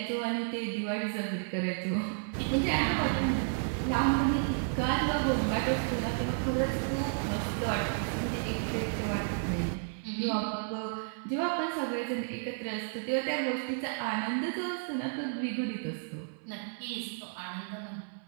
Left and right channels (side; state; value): left; silent; 56 dB below the other